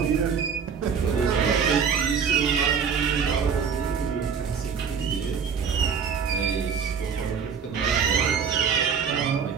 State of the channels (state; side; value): quieter; left; 6.6 dB